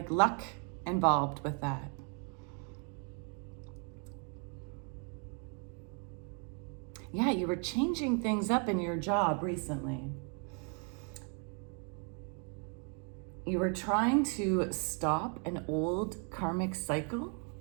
luck involved with that. Yeah, you were changing things up in your job recently. You were trying to stop an old karmic cycle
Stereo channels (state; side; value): quieter; left; 38.4 dB